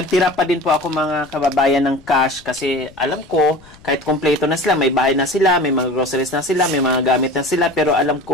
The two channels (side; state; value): left; noise; rumble, 25 dB below the sound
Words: pa din po ako mga kababayan ng cash kasi alam ko, kahit kompleto na sila, may bahay na sila, may mga groceries na sila, may mga gamit na sila, pero alam